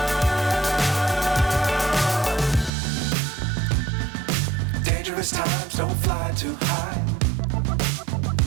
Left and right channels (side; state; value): left; drops out; at 2.7 s